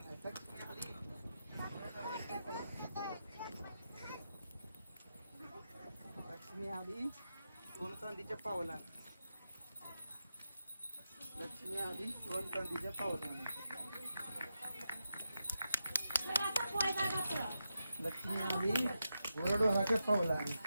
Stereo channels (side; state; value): both; inverted; correlation -0.87